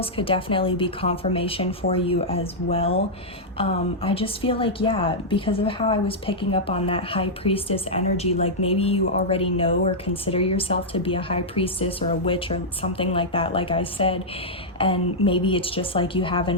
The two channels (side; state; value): both; normal; correlation -0.08